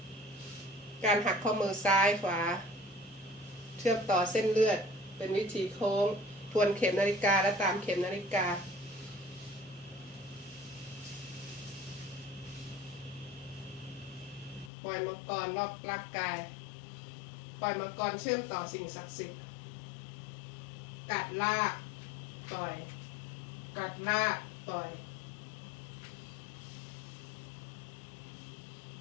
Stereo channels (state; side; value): drops out; right; at 14.7 s